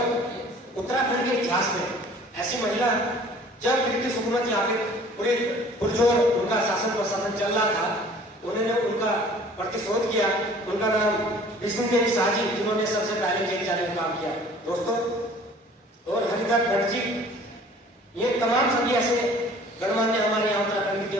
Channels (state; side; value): normal; both; correlation 0.50